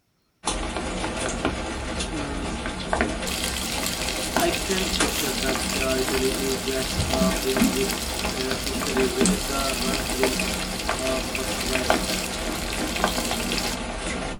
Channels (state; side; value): identical; both; correlation 1.00